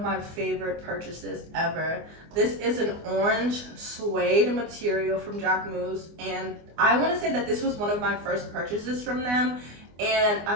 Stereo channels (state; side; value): late; left; 24 ms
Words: my favorite purchases ever. This is an orange suede material from Jacquemus, and I want to say that this was one of my first purchases from them, and